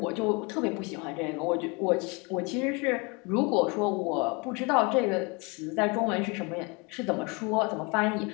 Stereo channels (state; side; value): quieter; right; 29.3 dB